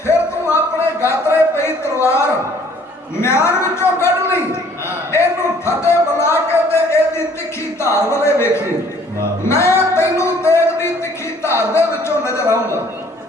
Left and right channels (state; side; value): normal; both; correlation 0.58